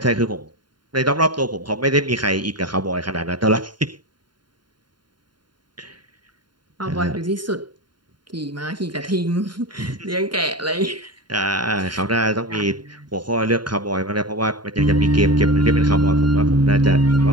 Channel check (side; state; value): left; late; 0.71 ms